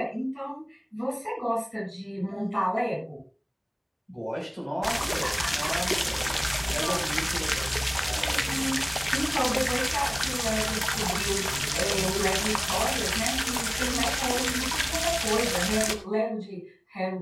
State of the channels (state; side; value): identical; both; correlation 1.00